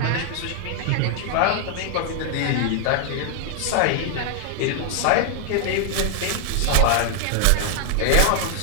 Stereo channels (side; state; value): both; different; correlation 0.00